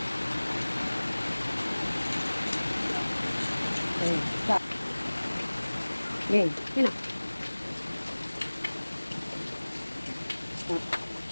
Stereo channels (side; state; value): both; inverted; correlation -1.00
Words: Okay, stop. Okay, yun na. Stop.